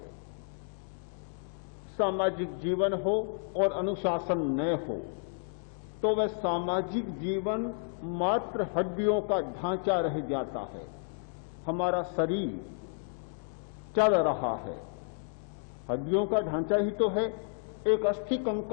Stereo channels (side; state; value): right; silent; digital silence